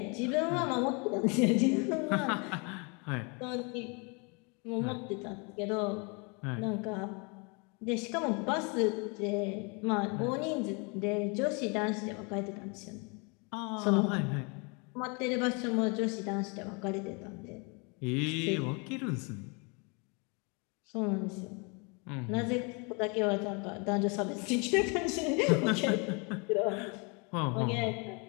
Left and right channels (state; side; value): quieter; right; 32.3 dB